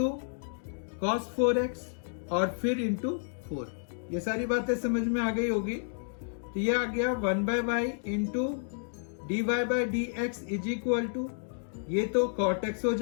cos 4x और फिर इंटू 4। ये सारी बातें समझ में आ गई होगी। तो ये आ गया 1/y into dy/dx is equal to, ये तो cot x हो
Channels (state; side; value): silent; right; digital silence